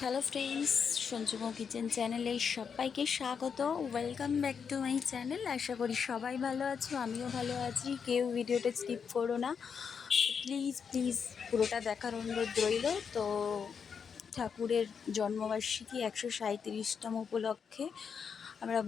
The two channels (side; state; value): right; quieter; 6.5 dB